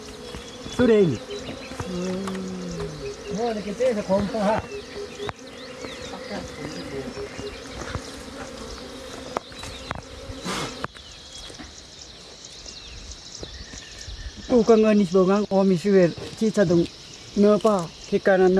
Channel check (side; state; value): both; identical; correlation 1.00